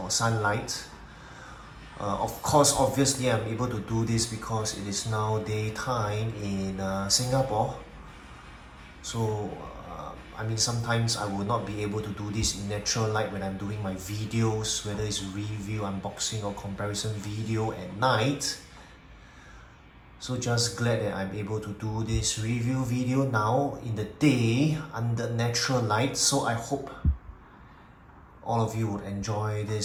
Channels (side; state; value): both; identical; correlation 1.00